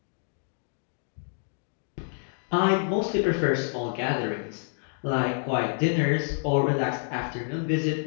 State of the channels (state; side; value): silent; right; digital silence